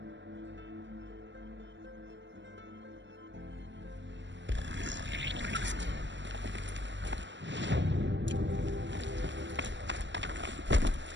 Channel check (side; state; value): left; late; 0.53 ms